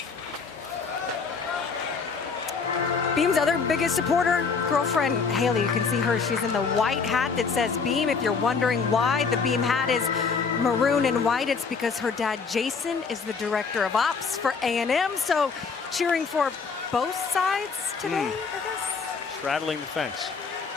Beam's other biggest supporter, girlfriend Haley. You can see her. She's in the white hat that says Beam. If you're wondering why the Beam hat is maroon and white, it's because her dad Jason is the director of ops for A&M. So cheering for both sides today, I guess. Straddling the fence.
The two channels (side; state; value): right; quieter; 5.2 dB